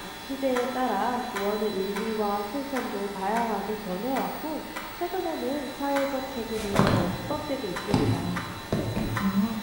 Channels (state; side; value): identical; both; correlation 1.00